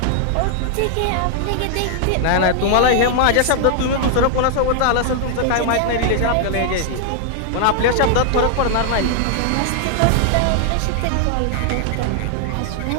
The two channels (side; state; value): both; different; correlation 0.00